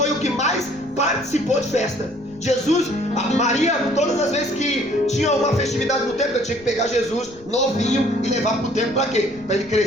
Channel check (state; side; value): noise; left; rumble, 24 dB below the sound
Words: o que mais participou de festa. Jesus, a Maria, todas as vezes que tinha uma festividade no templo, eu tinha que pegar Jesus novinho e levar para o templo para quê? Para ele